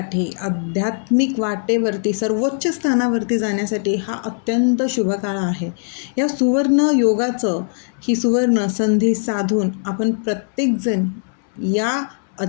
आध्यात्मिक वाटेवरती सर्वोच्च स्थानावरती जाण्यासाठी हा अत्यंत शुभ काळ आहे. या सुवर्ण योगाचं, ही सुवर्ण संधी साधून आपण प्रत्येकजण या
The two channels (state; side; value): silent; right; digital silence